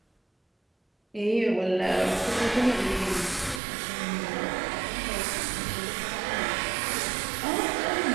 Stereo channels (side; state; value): left; drops out; at 3.6 s